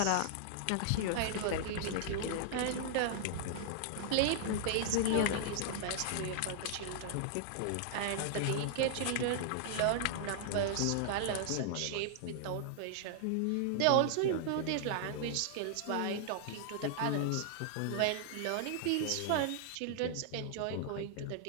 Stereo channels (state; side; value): different; both; correlation -0.01